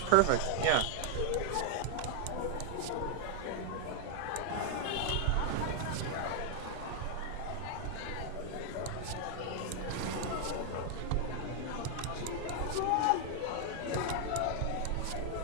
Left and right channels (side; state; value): both; different; correlation 0.00